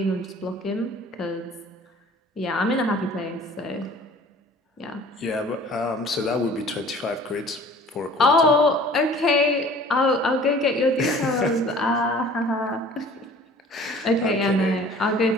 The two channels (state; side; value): normal; both; correlation 0.48